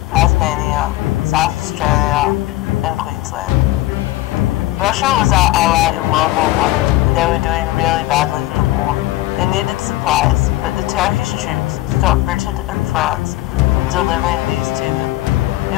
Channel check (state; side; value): quieter; right; 17.0 dB